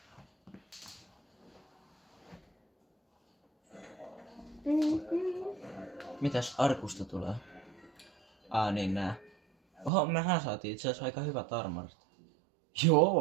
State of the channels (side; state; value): left; drops out; at 9.9 s